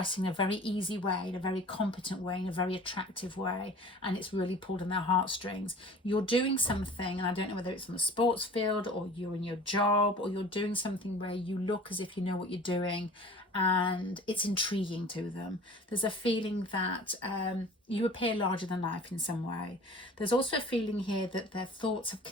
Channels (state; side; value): normal; both; correlation 0.44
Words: in a very easy way, in a very competent way, in a very attractive way, and it's really pulled on their heartstrings. You're doing something, and I don't know whether it's on the sports field or you're in your job, or you're doing something where you look as if you know what you're doing, and it's intriguing to them. There's a feeling that you appear larger than life in some way. There's also a feeling here that their thoughts have